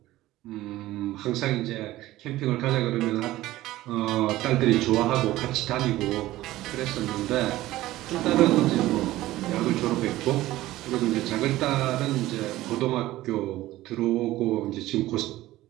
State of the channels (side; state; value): left; quieter; 16.3 dB